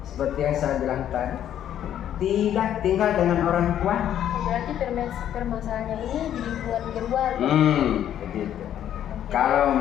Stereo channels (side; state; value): right; quieter; 10.6 dB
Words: seperti yang saya bilang tadi tidak tinggal dengan orang tua. Berarti permasalahannya ini di lingkungan keluarga. Begitu. Kalau